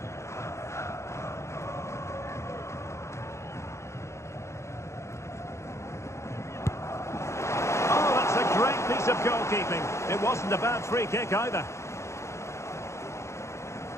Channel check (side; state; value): right; late; 0.14 ms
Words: Oh, that's a great piece of goalkeeping. It wasn't a bad free kick either.